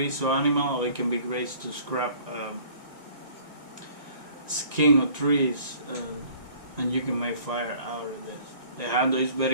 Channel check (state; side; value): late; left; 1.9 ms